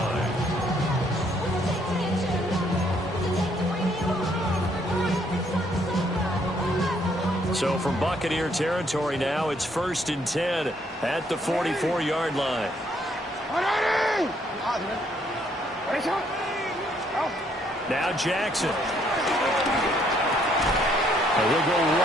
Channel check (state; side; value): normal; both; correlation 0.69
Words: So from Buccaneer territory now, it's 1st and 10 at the 44-yard line. Now Jackson. And he'll go